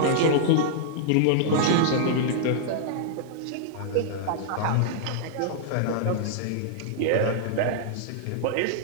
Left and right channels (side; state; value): both; different; correlation -0.01